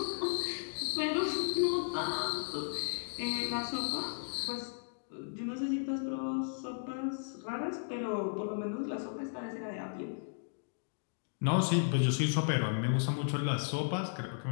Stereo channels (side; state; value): right; silent; digital silence